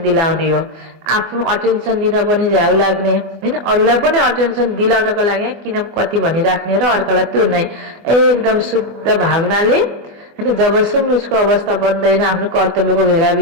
दिलाउने हो। आफ्नो अटेन्सन दिन पनि झ्याउ लाग्ने हैन, अरूलाई पनि अटेन्सन दिलाउनको लागि किन कति भनिराख्ने र अर्कालाई त्यो नै एकदम शुद्ध भावनाले हैन। जबसम्म उसको अवस्था बन्दैन आफ्नो कर्तव्यको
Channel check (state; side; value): late; left; 24 ms